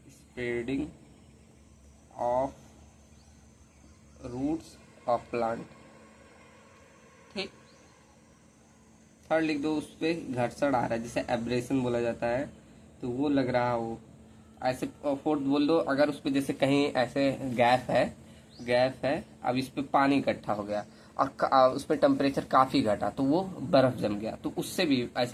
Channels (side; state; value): both; identical; correlation 1.00